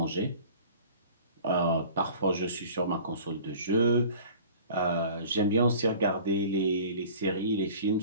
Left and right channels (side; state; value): both; inverted; correlation -0.44